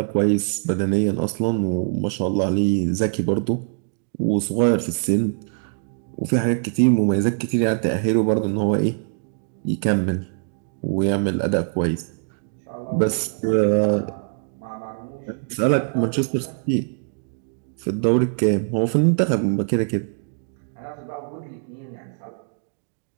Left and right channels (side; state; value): left; silent; 63 dB below the other